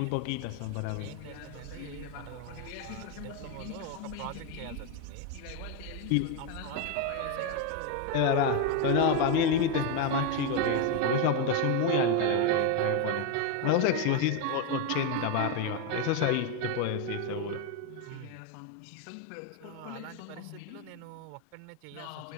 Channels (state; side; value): different; both; correlation 0.02